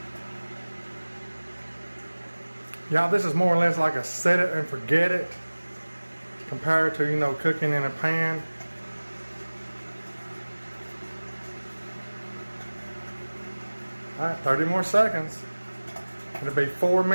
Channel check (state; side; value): inverted; both; correlation -1.00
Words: Y'all, this is more or less like a set it and forget it compared to, you know, cooking in a pan. All right, 30 more seconds. It'll be 4